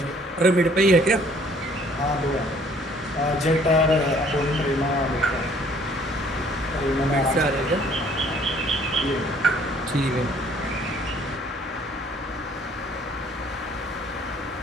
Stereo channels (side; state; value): both; normal; correlation 0.59